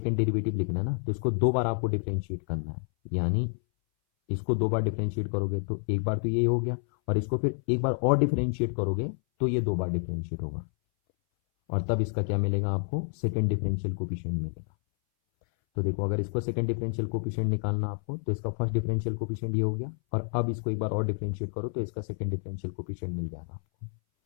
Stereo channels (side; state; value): right; silent; 59 dB below the other